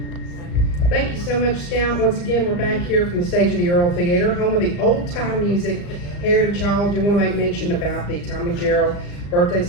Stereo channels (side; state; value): right; late; 35 ms